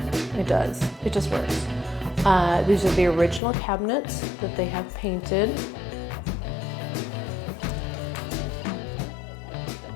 It does. It just works. These are the original cabinets that they have painted.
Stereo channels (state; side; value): drops out; right; at 3.4 s